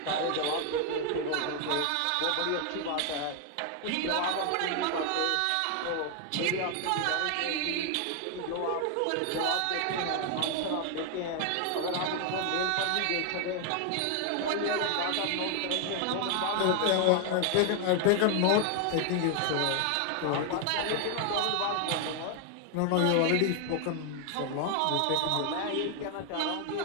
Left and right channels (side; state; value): both; different; correlation 0.00